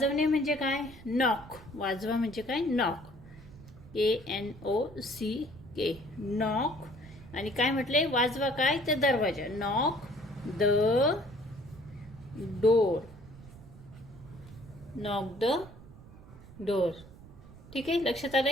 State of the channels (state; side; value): noise; right; rumble, 19 dB below the sound